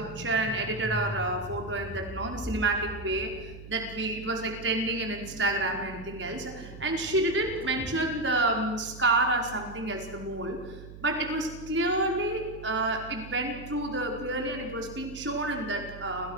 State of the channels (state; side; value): noise; right; hum, 14 dB below the sound